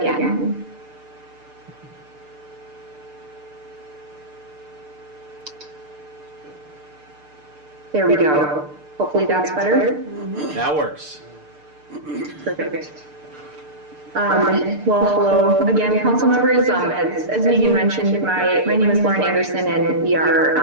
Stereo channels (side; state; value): left; late; 6.7 ms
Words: There we go. Hopefully that's better. That works. Perfect. Well, again, council members, as you mentioned, my name is Lauren Anderson, and we